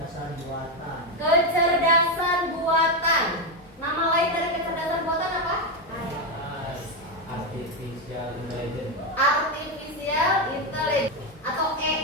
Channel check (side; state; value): both; normal; correlation 0.08